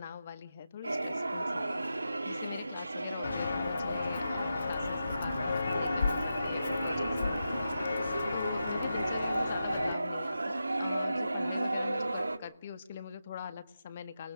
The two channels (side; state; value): both; inverted; correlation -0.88